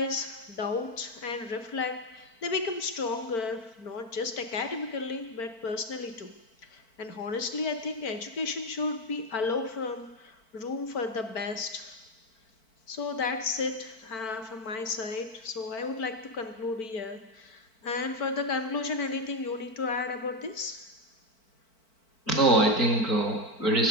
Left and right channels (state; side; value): late; right; 4.5 ms